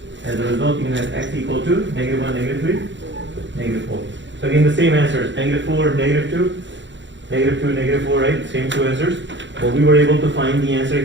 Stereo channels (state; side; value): late; left; 0.54 ms